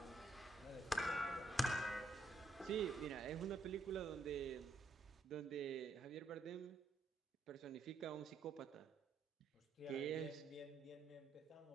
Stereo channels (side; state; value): left; quieter; 3.0 dB